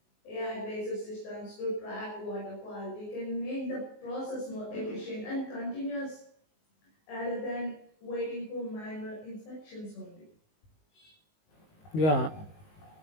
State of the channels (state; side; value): late; right; 19 ms